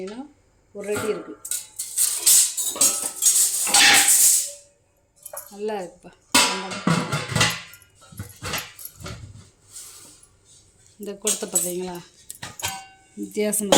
1 அடி இருக்குது. நல்லா இருக்குப்பா. இந்த குடத்தை பார்த்தீங்களா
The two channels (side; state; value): both; identical; correlation 1.00